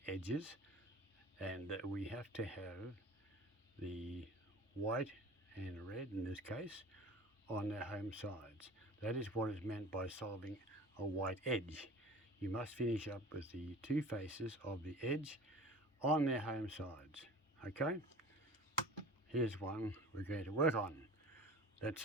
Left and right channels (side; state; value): both; normal; correlation 0.40